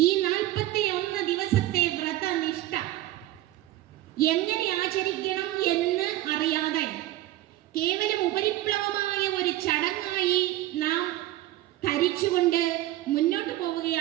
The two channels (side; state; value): left; quieter; 15.2 dB